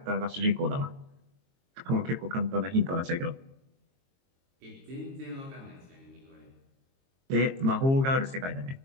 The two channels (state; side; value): late; left; 22 ms